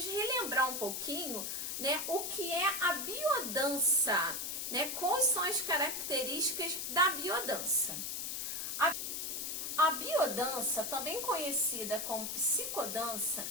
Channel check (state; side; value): noise; left; hiss, 3 dB below the sound